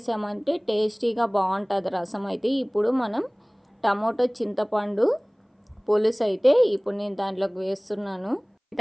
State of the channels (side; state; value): both; identical; correlation 1.00